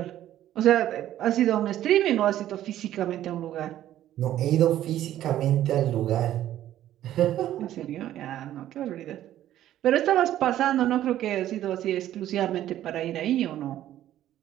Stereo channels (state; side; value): quieter; left; 12.6 dB